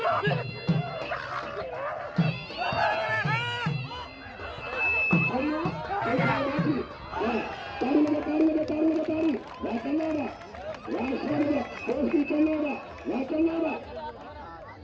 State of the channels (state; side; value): identical; both; correlation 1.00